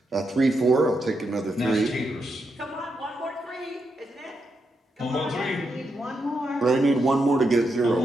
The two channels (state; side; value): normal; both; correlation 0.83